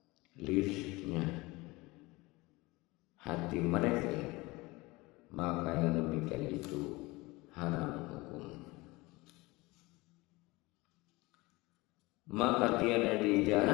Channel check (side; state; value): right; quieter; 22.4 dB